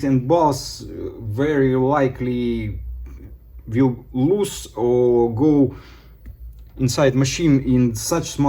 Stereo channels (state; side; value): identical; both; correlation 1.00